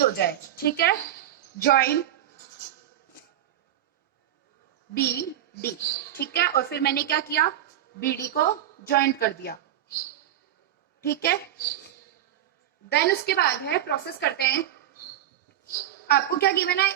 हो जाए। ठीक है, ज्वाइन BD। ठीक है, और फिर मैंने क्या किया? BD को ज्वाइंट कर दिया। ठीक है, देन उसके बाद है, प्रोसेस करते हैं। आपको क्या गिवन है?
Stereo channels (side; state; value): left; quieter; 11.9 dB